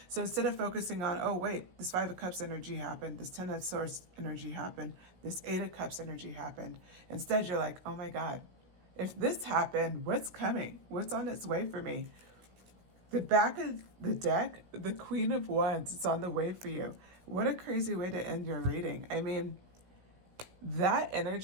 So instead of focusing on, oh, wait, this Five of Cups energy happened, this Ten of Swords energy happened, this Eight of Cups energy happened, instead you're like, oh my God, if this happened, what's coming? What's on its way for me? The back of the deck, the Queen of Wands, is on the way for you. What a crazy way to end your reading. I mean, that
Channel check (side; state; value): left; late; 17 ms